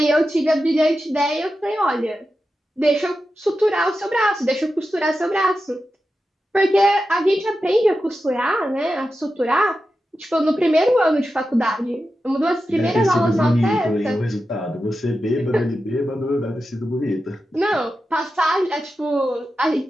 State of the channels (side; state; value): both; normal; correlation 0.91